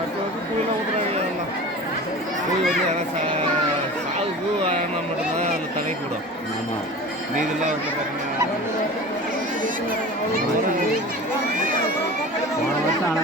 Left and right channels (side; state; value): both; normal; correlation 0.36